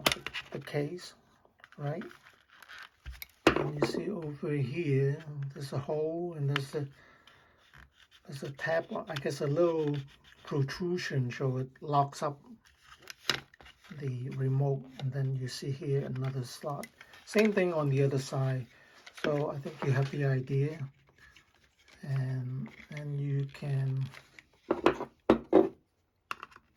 the case, right? And you see over here, there's a hole, and there's a tab, I guess a little protrusion, so it locks up the remote. And then you see here another slot. Same thing on the other side. So I think you have the idea, and you can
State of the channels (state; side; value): identical; both; correlation 1.00